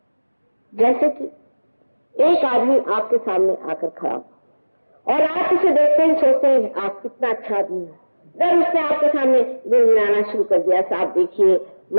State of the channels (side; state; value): both; inverted; correlation -1.00